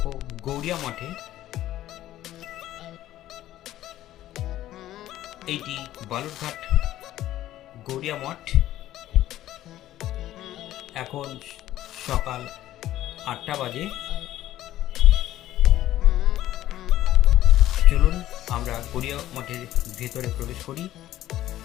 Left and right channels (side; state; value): right; quieter; 13.8 dB